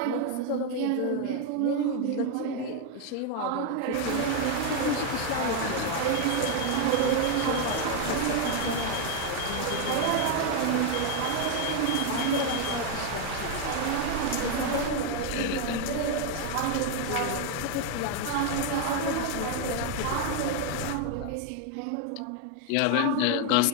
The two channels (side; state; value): both; different; correlation 0.01